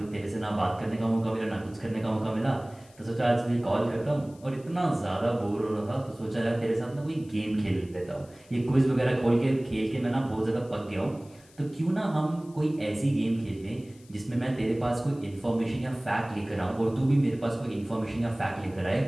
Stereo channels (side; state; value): left; noise; hiss, 27 dB below the sound